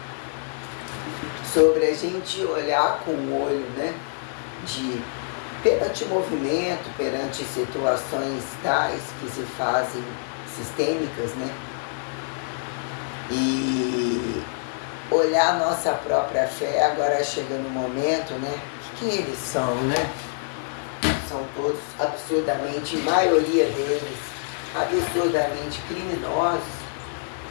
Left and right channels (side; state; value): right; silent; 61 dB below the other